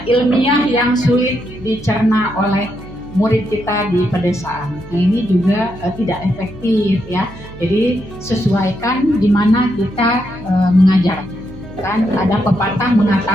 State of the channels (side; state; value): right; noise; hum, 17 dB below the sound